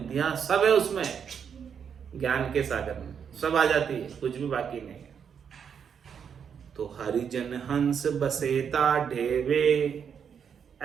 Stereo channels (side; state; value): left; quieter; 7.3 dB